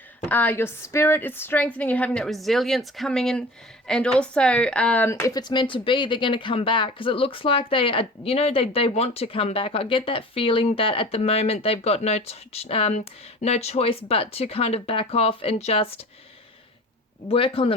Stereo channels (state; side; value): normal; both; correlation 0.40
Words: Your spirit is strengthening. You're having that resilience coming in. And also, if it's meant to be, they're going to come back, because it looks like they are, you know, they want to come back. I get that feeling that at the moment they've got no choice but to kind of back off and just work on